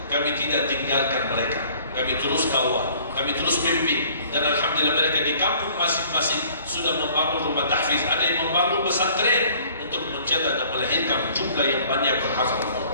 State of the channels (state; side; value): inverted; both; correlation -0.54